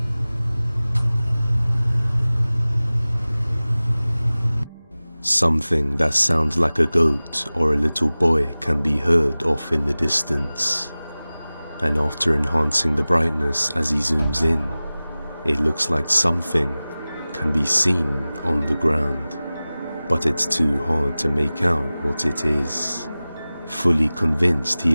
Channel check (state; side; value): inverted; both; correlation -0.98